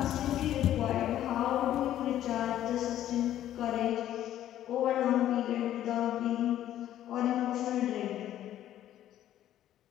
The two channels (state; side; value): quieter; right; 12.2 dB